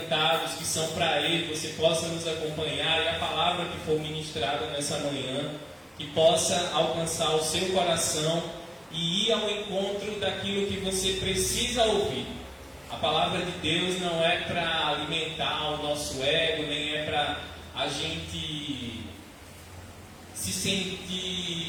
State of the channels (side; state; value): both; identical; correlation 1.00